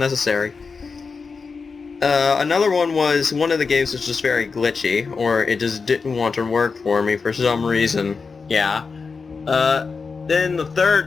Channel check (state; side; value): quieter; right; 4.9 dB